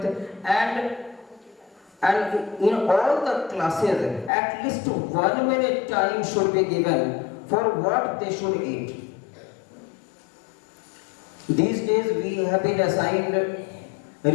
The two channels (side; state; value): right; drops out; at 4.3 s